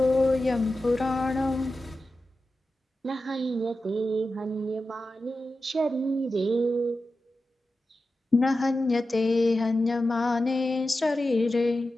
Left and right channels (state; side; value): normal; both; correlation 0.92